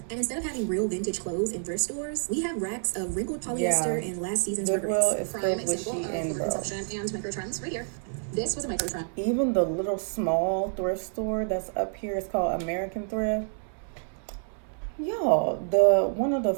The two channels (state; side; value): silent; left; 59 dB below the other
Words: And instead of having real vintage clothes in thrift stores, we have racks of wrinkled polyester and last season's Goodwill regrets. is Prime filled with example sheet of and bro. overconsumption and micro trends right here. This was a micro trend. Even the little small thrift store that's up here is called American Thrift. Y'all, one of the